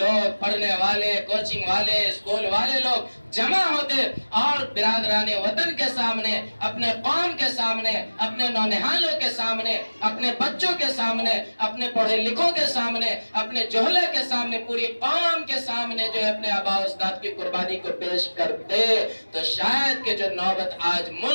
پڑھنے والے، کوچنگ والے، اسکول والے لوگ جمع ہوتے اور برادران وطن کے سامنے، اپنے قوم کے سامنے، اپنے نونہالوں کے سامنے، اپنے بچوں کے سامنے، اپنے پڑھے لکھوں کے سامنے، اپنے جوہلے کے سامنے، پوری قوم کے سامنے جو ہے اپنے آباء و اجداد کی قربانی کو پیش کرتے، تو شاید کہ جو نوبت آج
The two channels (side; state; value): both; inverted; correlation -1.00